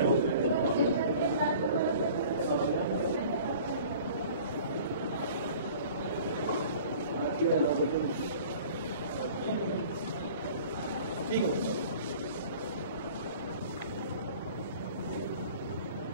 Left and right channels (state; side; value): inverted; both; correlation -0.46